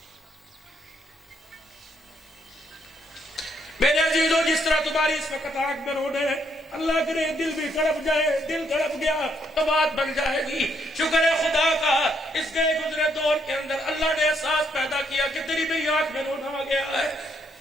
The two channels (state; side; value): normal; both; correlation 0.73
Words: میرے عزیزوں, جس طرح تمہاری اس وقت آنکھ میں رونے ہیں, اللہ کرے دل بھی تڑپ جائے. دل تڑپ گیا تو بات بن جائے گی. شکر ہے خدا کا, اس گئے گزرے دور کے اندر اللہ نے احساس پیدا کیا کہ تیری بھی آنکھ میں رونا آ گیا ہے.